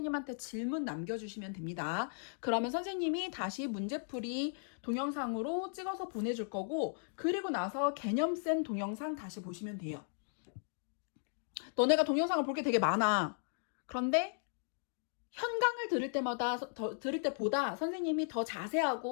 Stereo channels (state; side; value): silent; right; digital silence